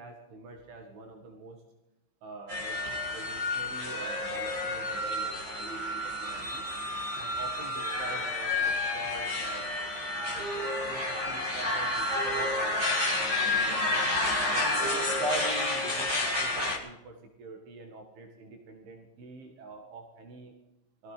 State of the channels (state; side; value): late; left; 15 ms